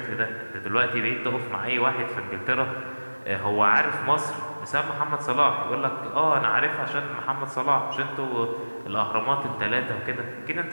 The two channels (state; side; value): inverted; both; correlation -1.00